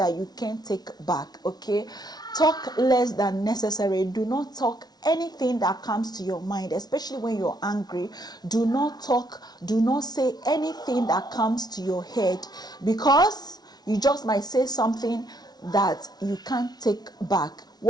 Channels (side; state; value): right; late; 0.19 ms